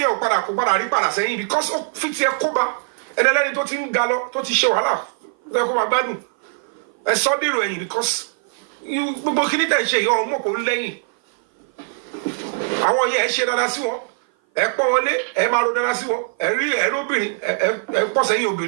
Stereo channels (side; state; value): left; silent; 57 dB below the other